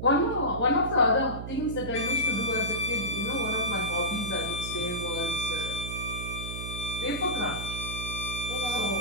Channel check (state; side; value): noise; right; hum, 7 dB below the sound